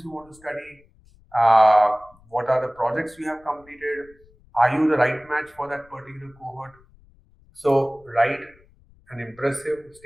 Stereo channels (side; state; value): left; noise; rumble, 29 dB below the sound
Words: you want to study? What are the projects you have completed? Are you the right match for that particular cohort? So write an impressive